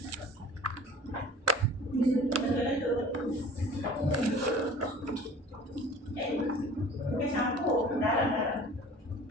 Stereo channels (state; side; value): normal; both; correlation 0.45